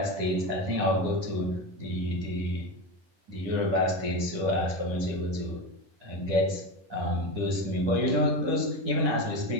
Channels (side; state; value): left; late; 10 ms